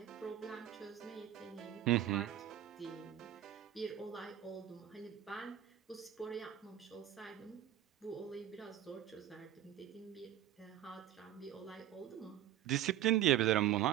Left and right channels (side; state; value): left; quieter; 12.0 dB